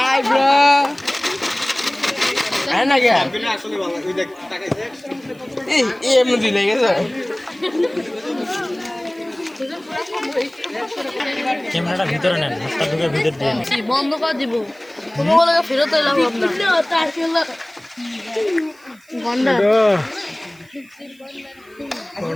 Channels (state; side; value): noise; right; hiss, 30 dB below the sound